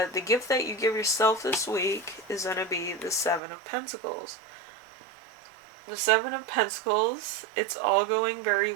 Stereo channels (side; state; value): left; drops out; at 3.4 s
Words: gift that you give yourself this week is going to be the 7 of Pentacles. The 7 of Pentacles, it's all going very